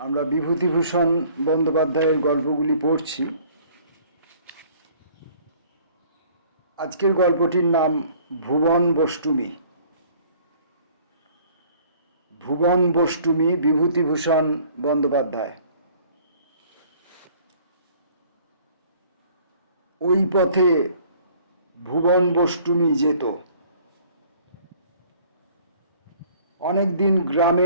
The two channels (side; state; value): both; inverted; correlation -0.54